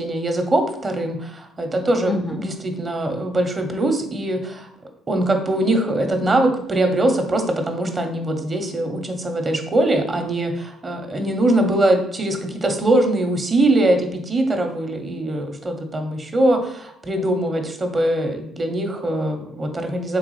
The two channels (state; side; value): normal; both; correlation 0.77